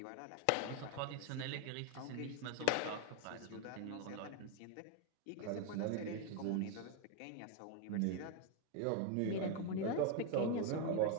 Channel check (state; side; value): different; both; correlation 0.01